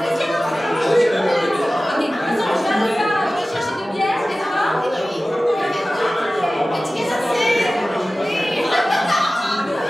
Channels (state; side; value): normal; both; correlation 0.96